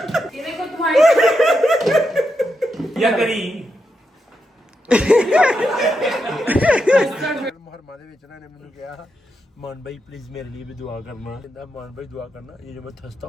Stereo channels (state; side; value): normal; both; correlation 0.85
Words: ये देखो तुम्हारी या करी मुहर्रमा ਦੇ ਵਿੱਚ ਇਹਨਾਂ ਨੇ ਮੈਨੂੰ ਕਿਹਾ मान भाई प्लीज मेरे लिए भी दुआ करना कहता मान भाई दुआ करना ये जो मैं थसता